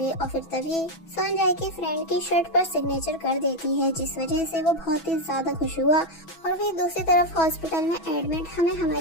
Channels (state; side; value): late; right; 6.1 ms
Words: और फिर तभी सेओन जाए के फ्रेंड की शर्ट पर सिग्नेचर कर देती है जिस वजह से वो बहुत ही ज्यादा खुश हुआ। और फिर दूसरी तरफ हॉस्पिटल में एडमिट हमें